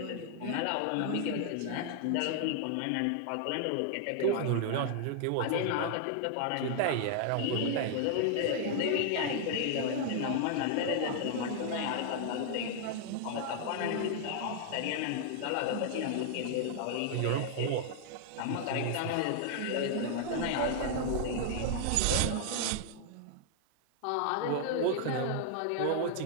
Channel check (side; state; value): both; different; correlation -0.01